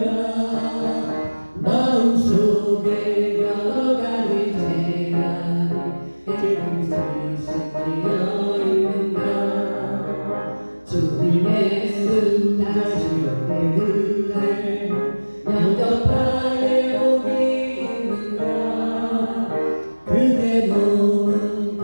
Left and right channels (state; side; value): inverted; both; correlation -1.00